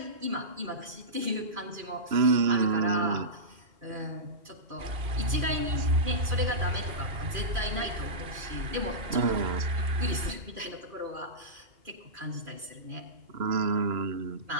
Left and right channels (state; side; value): late; left; 2.5 ms